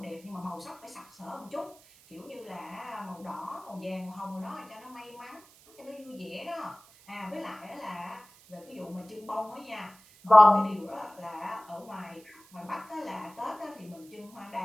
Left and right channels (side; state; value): right; noise; hiss, 25 dB below the sound